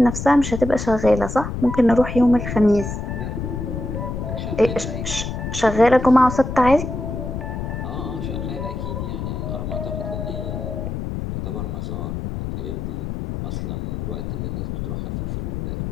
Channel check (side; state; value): left; noise; rumble, 5 dB below the sound